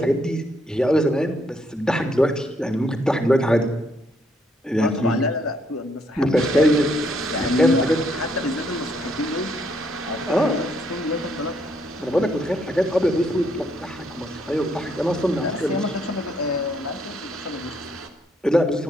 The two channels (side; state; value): both; normal; correlation 0.72